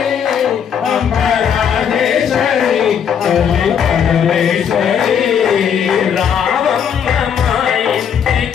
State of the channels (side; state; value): right; quieter; 8.0 dB